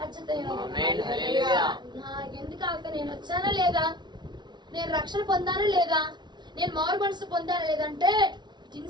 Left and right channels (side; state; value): left; late; 0.21 ms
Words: ఎందుకు ఆగితే నేను వచ్చానా లేదా, నేను రక్షణ పొందానా లేదా, నేను మారు మనసు పొందానా లేదంటే